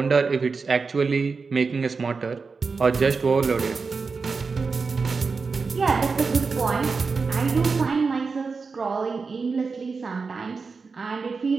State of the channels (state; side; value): quieter; left; 4.7 dB